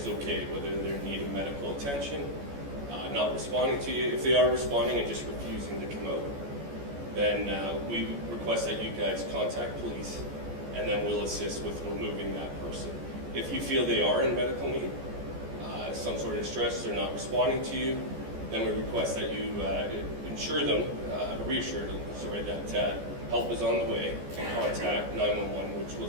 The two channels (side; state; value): left; late; 14 ms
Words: okay, whether they're in need of medical attention, not responding to you. If they are responding and just refusing to come out, then we request that you guys contact police, and then we'll assist with removing that person. If you feel they are in medical need, some sort of distress, they're not responding to you, then we request that you reassure them, that help is on the way, and contact 911, which will